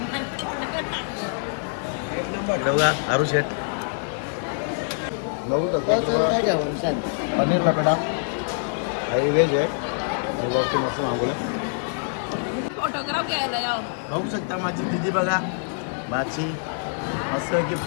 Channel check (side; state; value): right; silent; digital silence